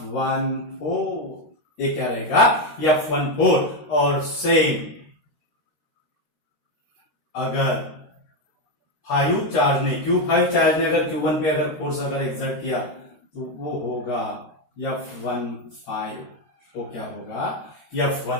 ये क्या रहेगा? F14. और सेम अगर Q5 चार्ज ने Q5 चार्ज ने अगर Q1 पे अगर फोर्स अगर एक्सर्ट किया तो वो होगा F15, वो क्या होगा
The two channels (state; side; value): late; right; 13 ms